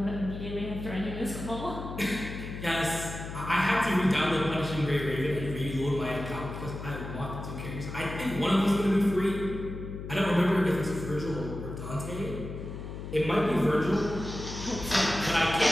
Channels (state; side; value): noise; left; hum, 9 dB below the sound